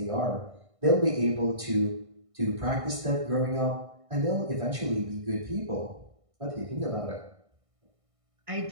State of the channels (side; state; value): left; late; 1.6 ms